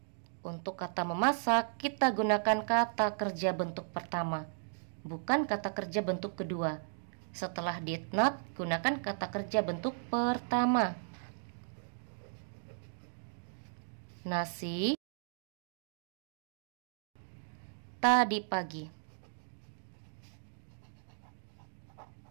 Untuk kata memasak kita gunakan kata kerja bentuk pertama, bukan kata kerja bentuk kedua. Setelah did not, gunakan kata kerja bentuk pertama. Nasi tadi pagi.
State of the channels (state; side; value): silent; left; digital silence